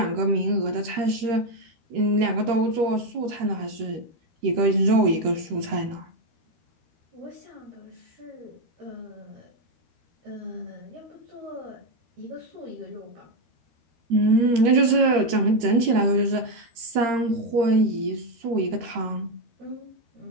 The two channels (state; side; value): late; left; 13 ms